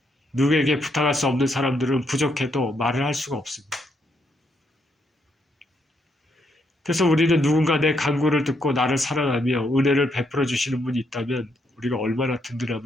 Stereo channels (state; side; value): normal; both; correlation 0.77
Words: 누구에게 부탁할 수 없는 사람들은 부족해도 말을 할 수가 없습니다. 그래서 우리는 누군가 내 간구를 듣고 나를 사랑하며 은혜를 베풀어 주시는 분이 있다면 우리가 얼마나